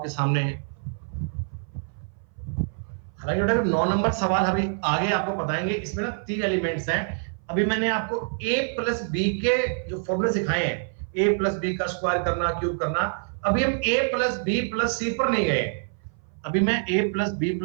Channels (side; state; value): left; silent; 58 dB below the other